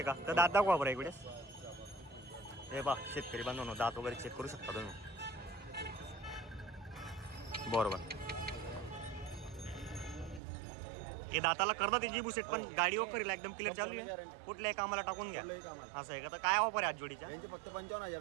का? तर दात दाखवा बरं इकडे. हे पहा शेतकरी बांधवांनो, दात वगैरे चेक करू शकता तुम्ही. बरोबर. हे दाताला करतात जी बुसेट, पण गाडी वगैरे एकदम क्लिअर चालू आहे. कुठल्याही कामाला टाकून घ्या कुठलंही कामाला. असं आहे का? तर काय ऑफर आहे आज जोडीच्या? यांचे फक्त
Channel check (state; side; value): drops out; left; at 10.4 s